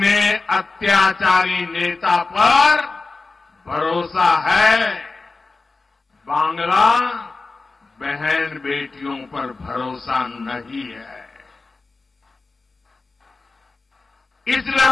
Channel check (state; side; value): quieter; right; 3.7 dB